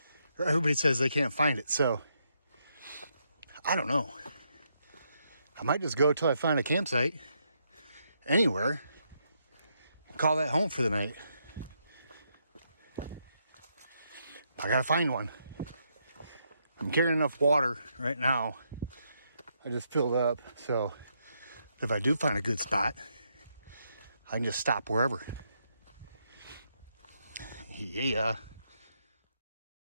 they can't find it. So I don't know. I might just go till I find a campsite anywhere. Call that home for the night. I gotta find one. I'm carrying enough water right now. I just filled up, so if I do find a good spot, I can just stop wherever. Yeah.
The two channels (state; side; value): inverted; both; correlation -0.78